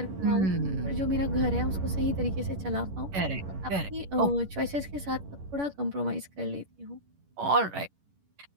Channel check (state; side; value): late; left; 11 ms